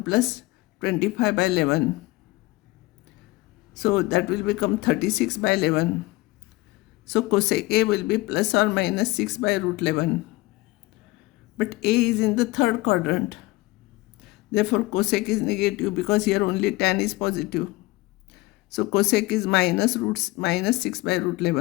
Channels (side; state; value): right; quieter; 20.7 dB